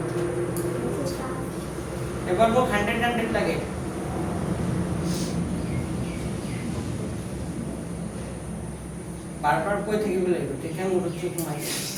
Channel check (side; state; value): both; identical; correlation 1.00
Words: এবাৰ মোক 100 লাগে বাৰ বাৰ কৈ থাকিব লাগিব তেতিয়া মোৰ ঠিক সোমাই